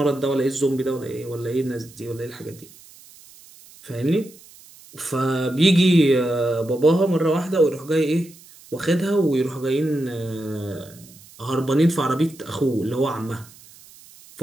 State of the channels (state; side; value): noise; right; hiss, 23 dB below the sound